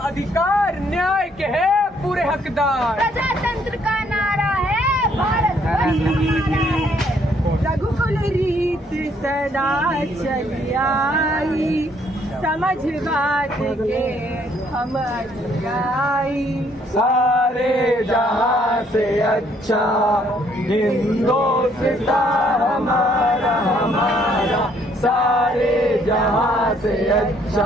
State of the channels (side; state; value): both; normal; correlation 0.66